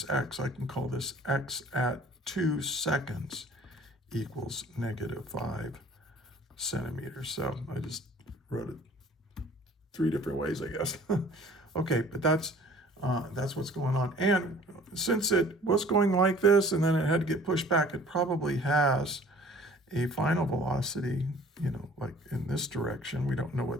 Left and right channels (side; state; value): both; normal; correlation 0.50